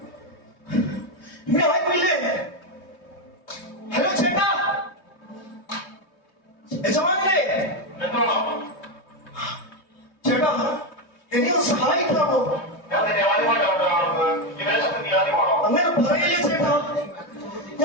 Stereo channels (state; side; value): late; right; 3.2 ms